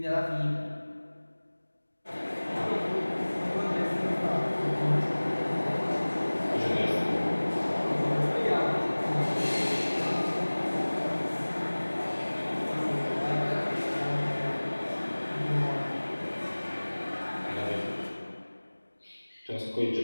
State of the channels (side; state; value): both; inverted; correlation -1.00